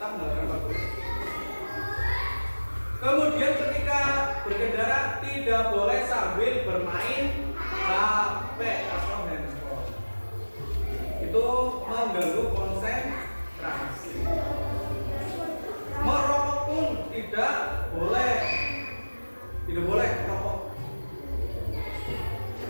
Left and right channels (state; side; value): inverted; both; correlation -1.00